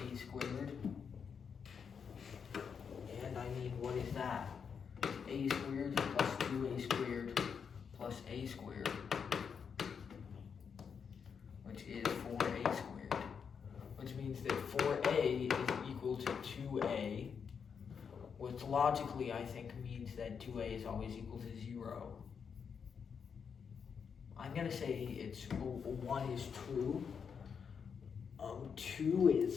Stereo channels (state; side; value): quieter; right; 6.6 dB